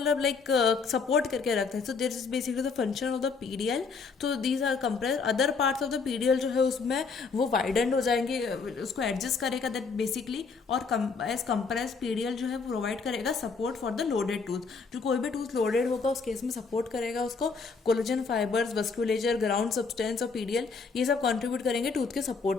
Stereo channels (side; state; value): right; quieter; 4.9 dB